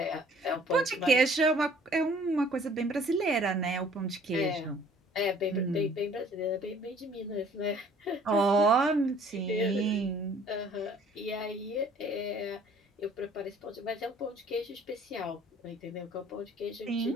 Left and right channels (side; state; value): both; normal; correlation 0.55